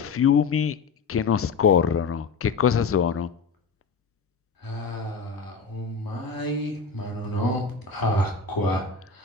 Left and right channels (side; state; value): right; quieter; 5.0 dB